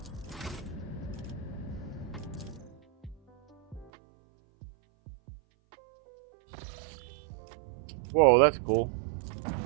Whoa, that's cool.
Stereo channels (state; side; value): drops out; left; at 3.9 s